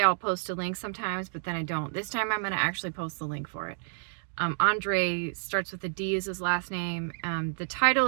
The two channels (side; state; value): left; silent; digital silence